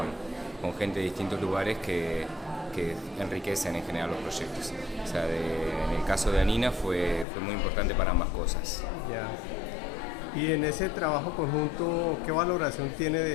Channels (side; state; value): right; drops out; at 7.2 s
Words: gente de distintos lugares que enriquecen en general los proyectos. O sea, en el caso de Anina fue muy importante para ambas cosas. Ya. Y en ese trabajo conjunto, ¿qué valoración tiene